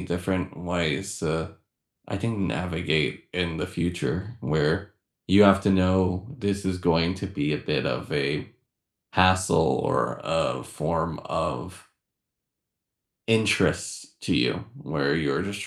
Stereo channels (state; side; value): identical; both; correlation 1.00